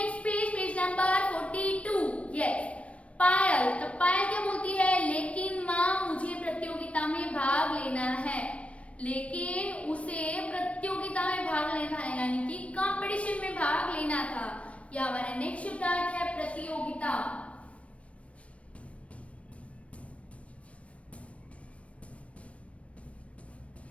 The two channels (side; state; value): right; late; 0.063 ms